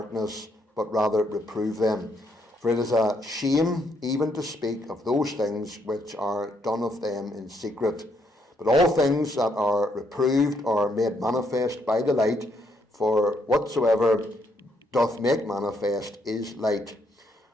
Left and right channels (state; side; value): normal; both; correlation 0.74